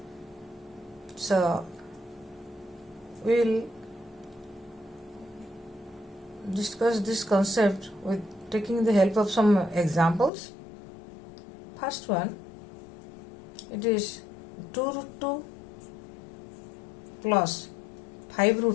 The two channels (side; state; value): right; drops out; at 10.3 s